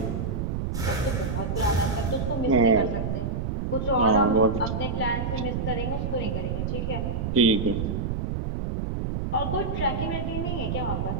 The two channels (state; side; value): noise; right; rumble, 1 dB below the sound